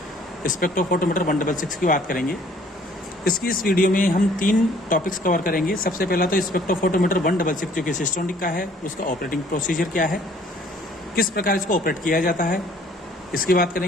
स्पेक्ट्रोफोटोमीटर 166 की बात करेंगे। इसकी इस वीडियो में हम 3 टॉपिक्स कवर करेंगे। सबसे पहला तो स्पेक्ट्रोफोटोमीटर 166 जो कि सिस्टोनिक का है, उसका ऑपरेटिंग प्रोसीजर क्या है, किस प्रकार इसको ऑपरेट किया जाता है, इसकी बात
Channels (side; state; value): both; normal; correlation 0.57